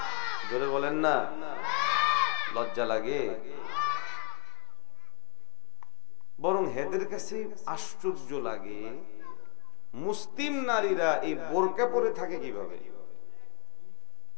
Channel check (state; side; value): quieter; right; 32.8 dB